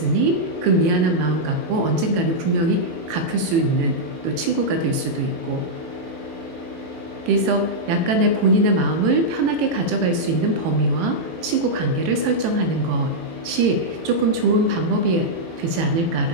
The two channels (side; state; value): left; late; 18 ms